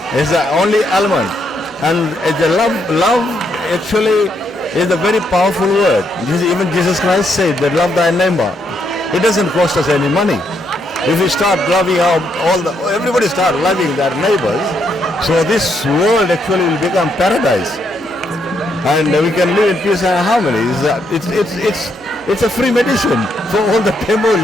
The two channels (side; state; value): both; normal; correlation 0.76